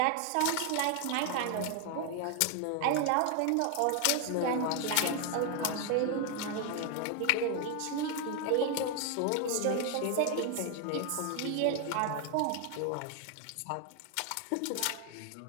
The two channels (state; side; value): different; both; correlation 0.00